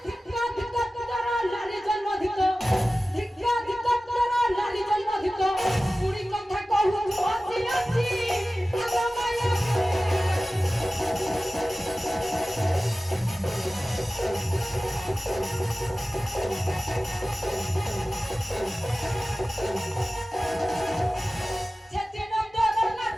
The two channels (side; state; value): both; normal; correlation 0.96